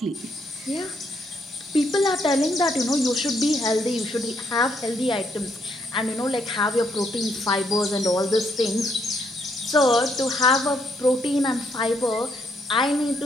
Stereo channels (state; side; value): normal; both; correlation 0.74